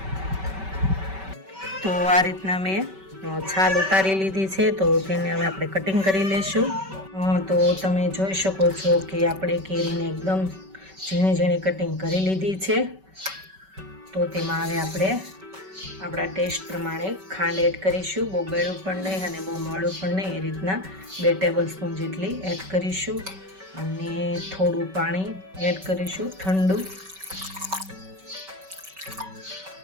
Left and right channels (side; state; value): left; late; 5.2 ms